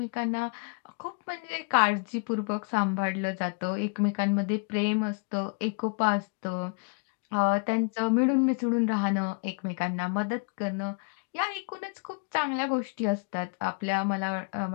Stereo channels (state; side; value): quieter; right; 35.8 dB